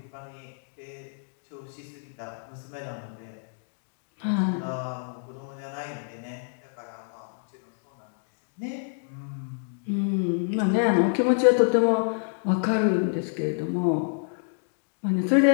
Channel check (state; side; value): silent; right; digital silence